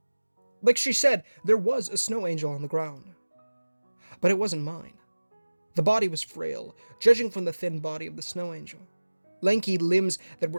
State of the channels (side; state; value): both; inverted; correlation -1.00